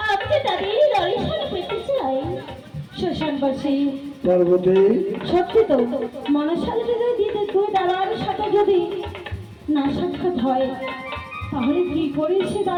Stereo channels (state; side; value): identical; both; correlation 1.00